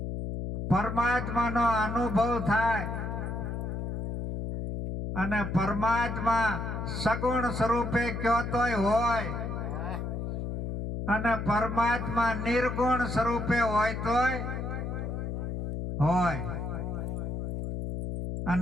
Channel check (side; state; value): left; noise; hum, 4 dB below the sound